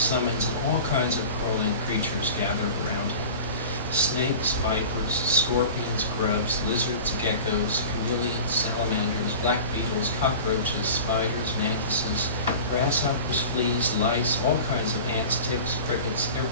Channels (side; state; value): both; inverted; correlation -0.36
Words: and all kinds of crawling creatures gathered around him. Snakes, vipers, scorpions, grubs, lizards, geckos, chameleons, salamanders, black beetles, cockroaches, spiders, mantises, grasshoppers, fleas, lice, all kinds of ants, ticks, crickets,